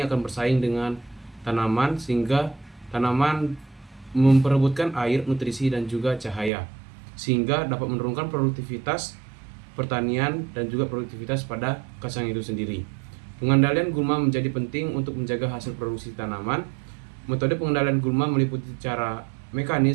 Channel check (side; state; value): left; drops out; at 6.5 s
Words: akan bersaing dengan tanaman sehingga tanaman memperebutkan air, nutrisi, dan juga cahaya, sehingga dapat menurunkan produktivitas pertanian dan juga produktivitas pada kacang itu sendiri. Pengendalian gulma menjadi penting untuk menjaga hasil produksi tanaman. Metode pengendalian gulma meliputi cara